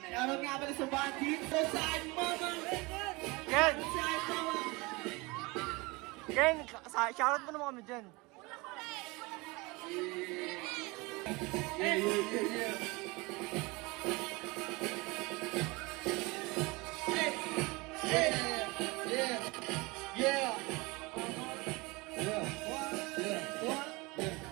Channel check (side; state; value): left; quieter; 24.7 dB